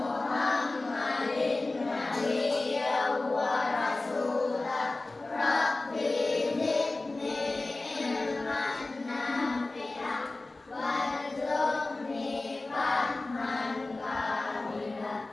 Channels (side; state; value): right; quieter; 3.1 dB